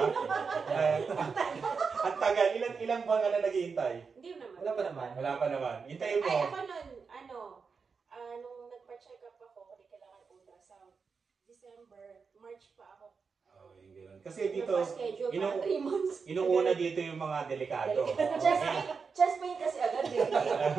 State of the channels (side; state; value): left; quieter; 5.3 dB